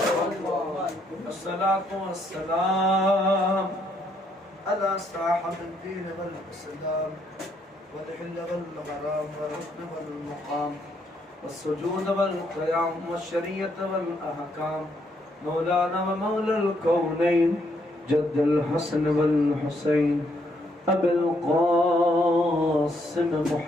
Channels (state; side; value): normal; both; correlation 0.73